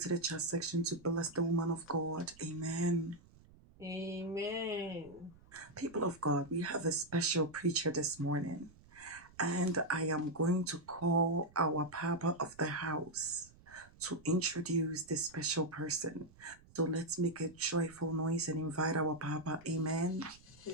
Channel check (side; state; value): right; noise; rumble, 25 dB below the sound